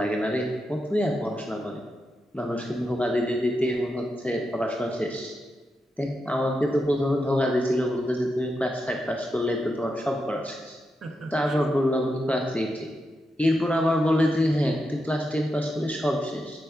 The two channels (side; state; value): both; normal; correlation 0.86